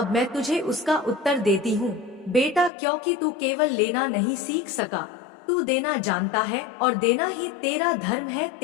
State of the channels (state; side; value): drops out; right; at 2.7 s